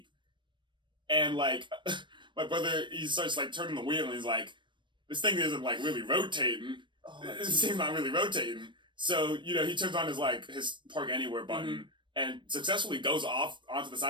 and my brother, he starts turning the wheel, and he's like, "This thing isn't really rotating. This thing's not really rotating." So he turns on his park anywhere button and successfully goes off onto the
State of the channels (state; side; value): late; left; 0.23 ms